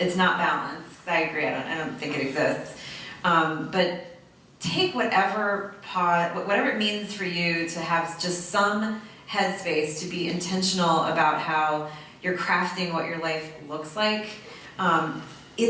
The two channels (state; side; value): identical; both; correlation 1.00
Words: not balanced. I agree. I don't think it exists. But take whatever it means for you to have just some headspace to be intentional about how you're crafting what your life looks like.